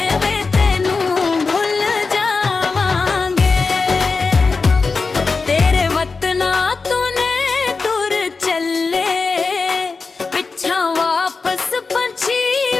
वे तेनू भुल जावांगे। तेरे वतना तूने तुर चले पिछा वापस पंछी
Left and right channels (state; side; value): quieter; right; 4.3 dB